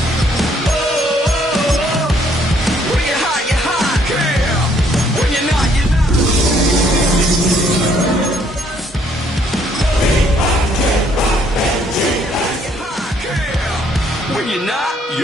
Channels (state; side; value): normal; both; correlation 0.66